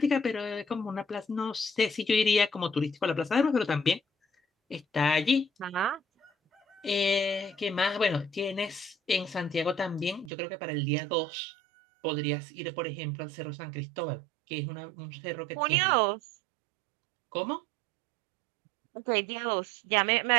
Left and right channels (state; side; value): drops out; left; at 10.3 s